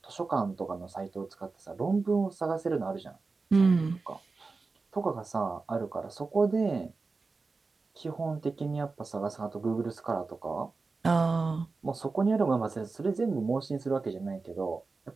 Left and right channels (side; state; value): left; quieter; 4.0 dB